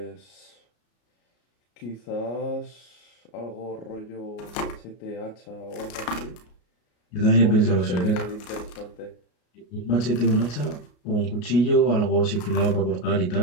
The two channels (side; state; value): right; late; 33 ms